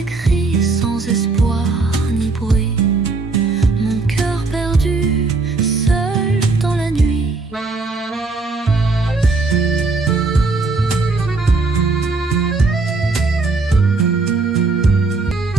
sans espoir ni bruit. Mon cœur perdu, seul dans la nuit.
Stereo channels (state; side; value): quieter; left; 3.8 dB